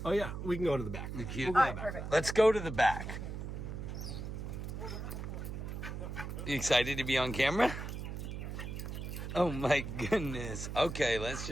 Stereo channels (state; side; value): noise; right; hum, 6 dB below the sound